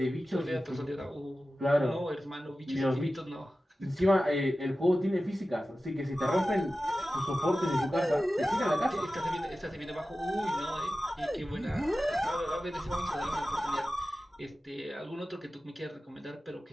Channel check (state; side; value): normal; both; correlation 0.95